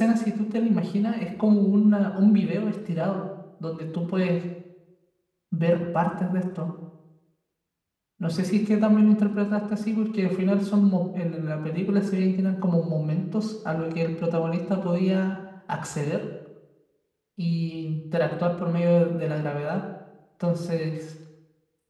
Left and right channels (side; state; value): both; identical; correlation 1.00